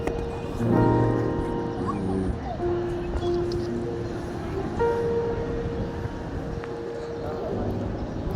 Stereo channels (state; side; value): identical; both; correlation 1.00